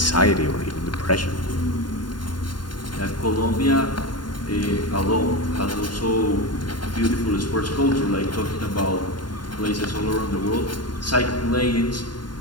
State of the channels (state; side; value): late; right; 0.71 ms